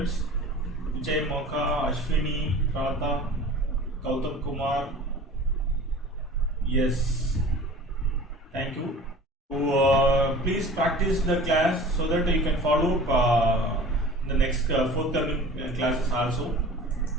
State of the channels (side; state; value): both; normal; correlation 0.42